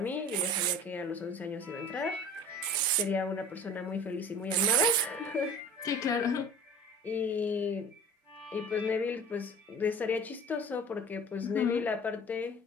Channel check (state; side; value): normal; both; correlation 0.42